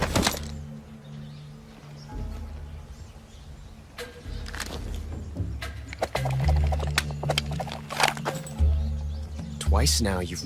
Twice now you've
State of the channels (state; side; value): identical; both; correlation 1.00